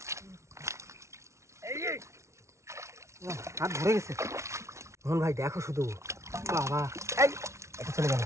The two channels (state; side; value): late; left; 0.14 ms